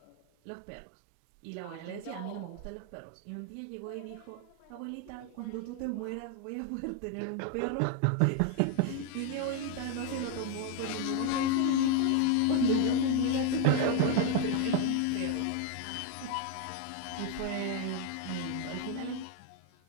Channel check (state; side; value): different; both; correlation 0.01